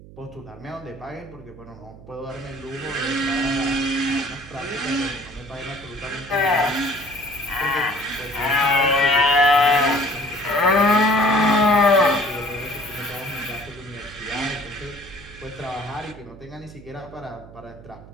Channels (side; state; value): right; noise; hum, 19 dB below the sound